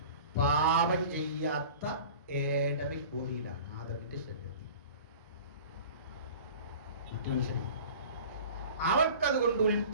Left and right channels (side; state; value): both; inverted; correlation -0.41